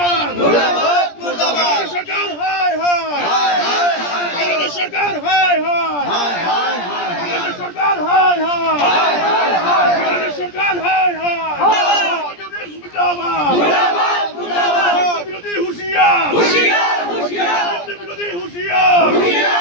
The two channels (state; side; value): late; right; 17 ms